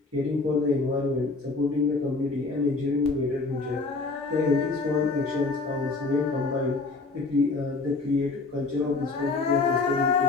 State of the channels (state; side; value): quieter; right; 3.7 dB